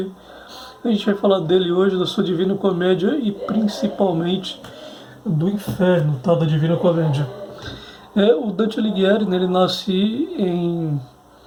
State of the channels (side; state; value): both; identical; correlation 1.00